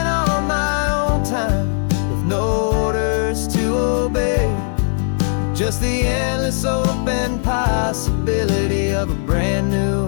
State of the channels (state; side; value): silent; right; 67 dB below the other